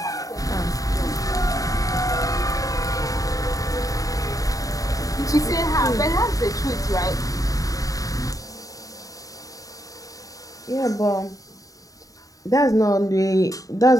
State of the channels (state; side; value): late; right; 0.17 ms